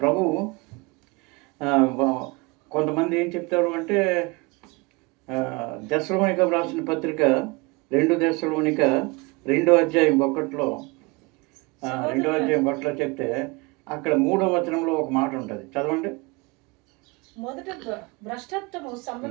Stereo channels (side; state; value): left; quieter; 26.5 dB